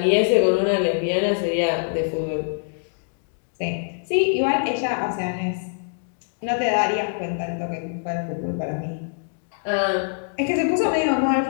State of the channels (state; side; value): silent; right; digital silence